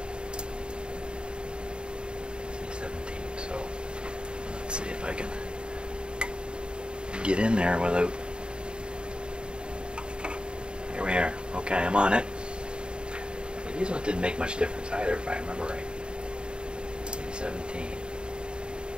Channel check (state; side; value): late; left; 0.051 ms